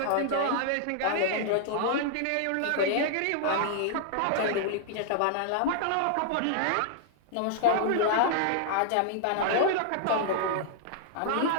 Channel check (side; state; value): both; different; correlation -0.01